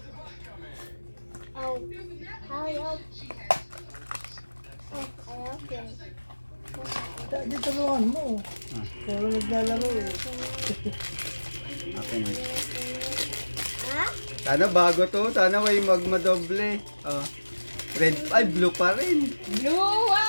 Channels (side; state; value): both; inverted; correlation -1.00